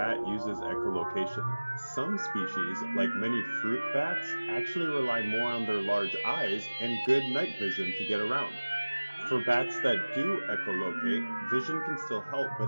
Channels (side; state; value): both; inverted; correlation -1.00